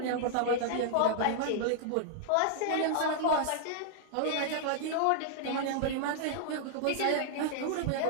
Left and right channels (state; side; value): different; both; correlation -0.01